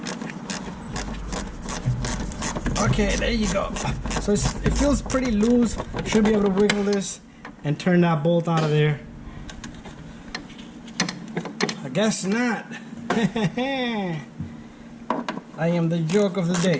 Okay, there you go. So it feels pretty loose. Should be able to wiggle this and turn that bolt out of there. I guess not. I am the joke of the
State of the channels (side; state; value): both; identical; correlation 1.00